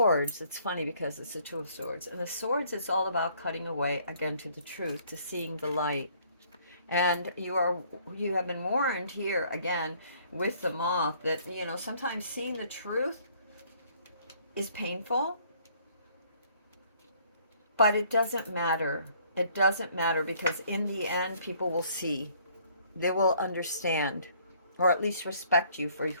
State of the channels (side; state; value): both; inverted; correlation -0.61